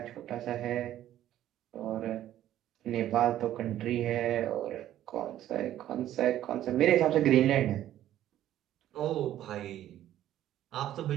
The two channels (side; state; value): left; quieter; 12.4 dB